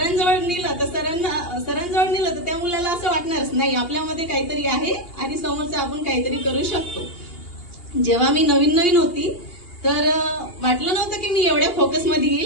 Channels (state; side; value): late; right; 2.8 ms